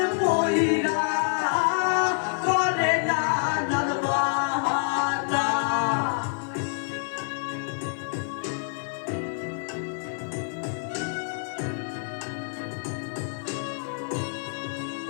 পয়রা করে নানান বাহানা।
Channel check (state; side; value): silent; right; 60 dB below the other